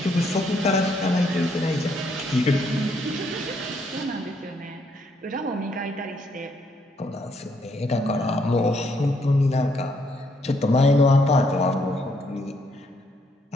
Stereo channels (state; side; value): normal; both; correlation 0.72